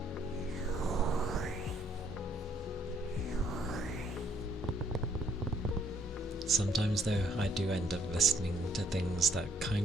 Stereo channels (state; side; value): normal; both; correlation 0.67